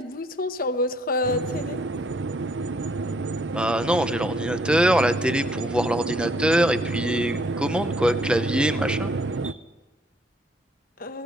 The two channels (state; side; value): normal; both; correlation 0.66